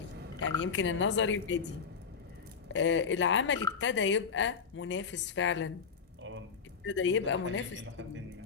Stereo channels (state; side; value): quieter; right; 5.8 dB